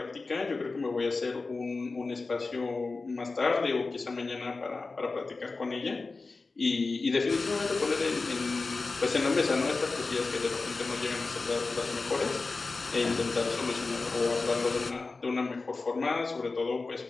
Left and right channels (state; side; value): quieter; right; 3.8 dB